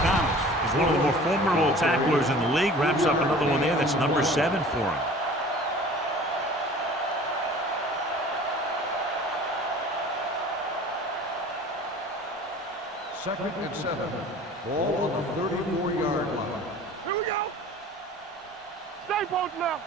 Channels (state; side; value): normal; both; correlation 0.44